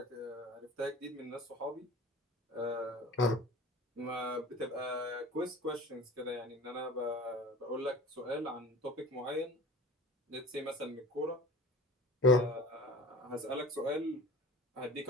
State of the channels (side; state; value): both; normal; correlation 0.40